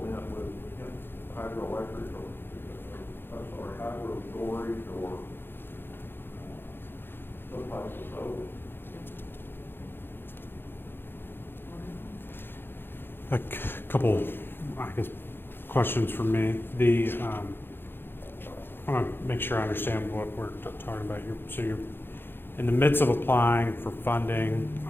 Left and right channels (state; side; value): late; right; 0.10 ms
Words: with, hydroelectric or, hydro storage or some type of solar. A couple, I guess, questions from me. I want to make sure I understand what we're talking about. So you're in the midst of applying for funding